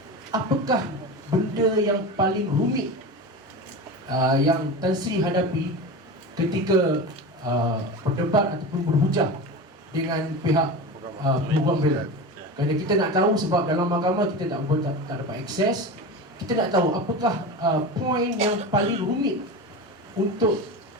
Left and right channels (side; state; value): both; normal; correlation 0.27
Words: apakah benda yang paling rumit yang Tan Sri hadapi ketika berdebat ataupun berhujah dengan pihak peguam bela? Kerana kita nak tahu, sebab dalam mahkamah kita tak dapat akses. Kita nak tahu apakah poin yang paling rumit untuk